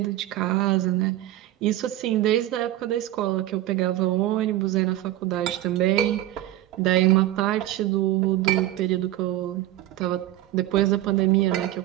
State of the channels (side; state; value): left; quieter; 14.5 dB